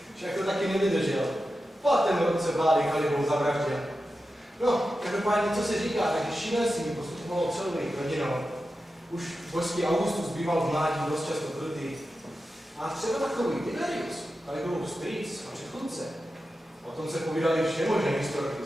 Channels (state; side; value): normal; both; correlation 0.91